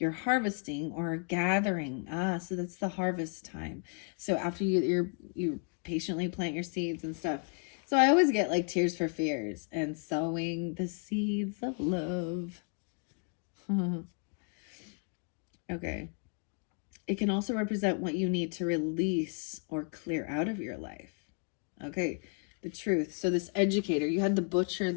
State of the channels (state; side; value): quieter; right; 38.5 dB